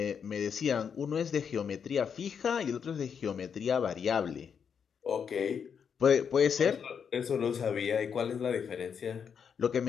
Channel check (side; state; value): right; quieter; 7.1 dB